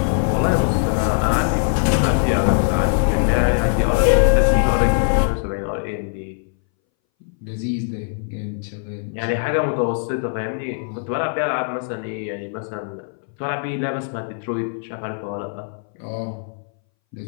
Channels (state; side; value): silent; right; 62 dB below the other